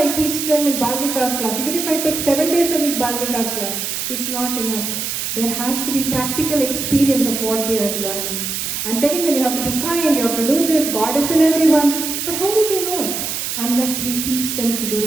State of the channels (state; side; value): noise; right; hiss, 3 dB below the sound